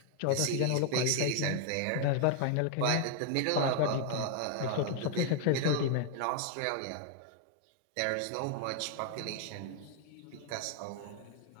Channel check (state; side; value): different; both; correlation 0.00